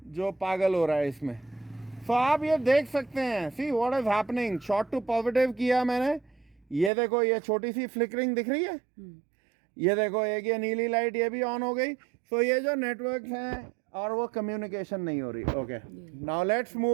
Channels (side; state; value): left; drops out; at 6.9 s